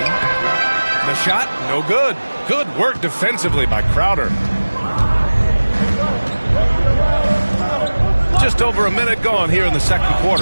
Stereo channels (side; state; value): both; inverted; correlation -1.00